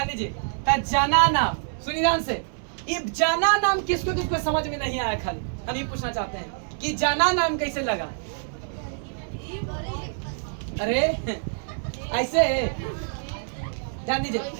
दीजिए, तो जना नाम, सुनिए ध्यान से, ये जना नाम किसको समझ में नहीं आया, खाली हम ये पूछना चाहते हैं कि जना नाम कैसे लगा। अरे ऐसे ध्यान दीजिए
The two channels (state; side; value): silent; left; digital silence